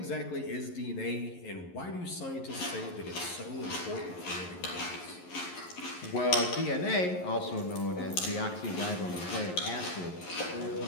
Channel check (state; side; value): late; right; 11 ms